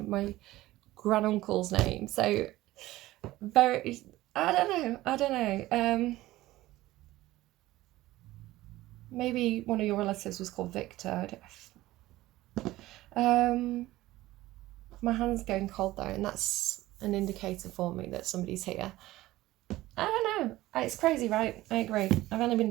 granduncle's name. So very, I don't know. Maybe one of your relatives was called Victor. My hand's going cold though, and that's an indicator for me that somebody's here. I don't know. It's crazy, right? I agree. I've only been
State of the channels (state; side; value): quieter; left; 16.9 dB